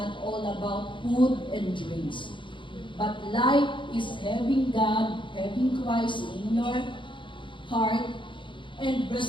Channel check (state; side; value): late; right; 0.24 ms